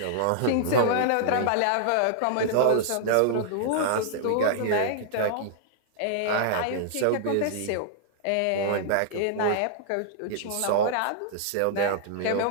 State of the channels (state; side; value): different; both; correlation -0.01